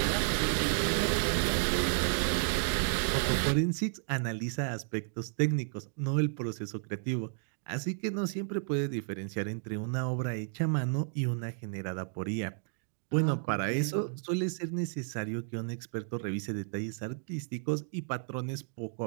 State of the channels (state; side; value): silent; left; digital silence